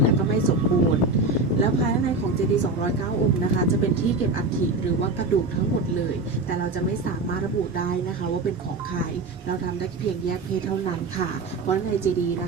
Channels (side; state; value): left; quieter; 3.3 dB